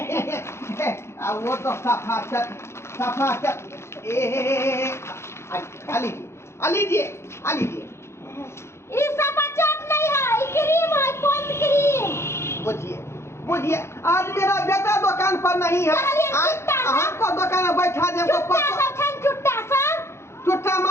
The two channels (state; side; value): late; right; 0.13 ms